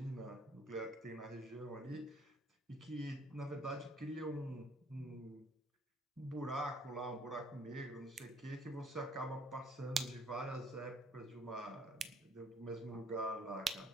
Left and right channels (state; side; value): normal; both; correlation 0.60